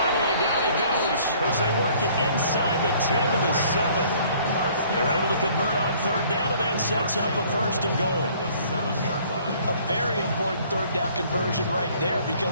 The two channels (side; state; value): both; inverted; correlation -0.57